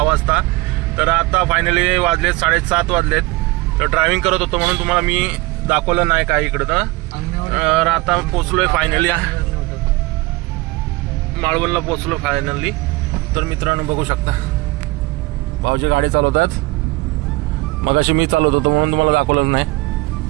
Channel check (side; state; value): left; quieter; 22.1 dB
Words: वाजता. तर आता फायनली वाजलेत 7:30 वाजलेत. तर ड्रायव्हिंग करत होतो म्हणून तुम्हाला मी दाखवलं नाही काय इकडं. तर आता पोचलोय फायनली माळवणला पोचलो फायनली. तर मित्रांनो बघू शकता भाऊजी गाडी चालवत आहेत. मगाशी मी चालवत होतो म्हणून तुम्हाला दाखवलं नाही.